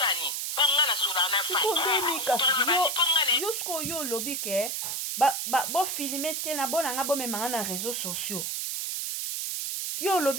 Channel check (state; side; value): noise; right; hiss, 2 dB below the sound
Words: ponga na sula na fai sikondeni kasi yo sko yo lobi ke bo filmer te na bona nga bo memanga na réseaux sociaux yo